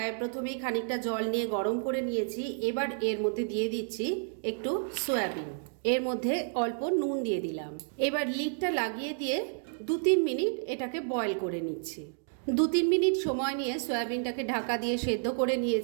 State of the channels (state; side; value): silent; left; digital silence